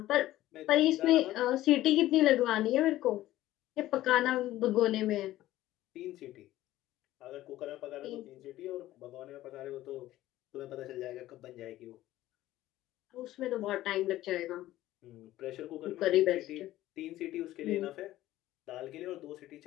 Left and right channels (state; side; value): quieter; right; 15.1 dB